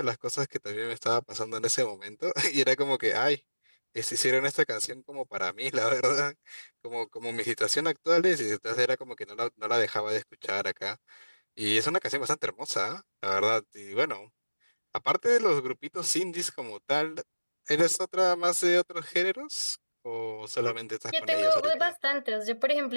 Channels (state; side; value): inverted; both; correlation -1.00